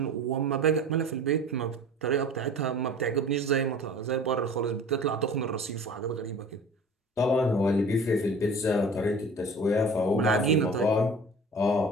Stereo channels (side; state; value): both; normal; correlation 0.42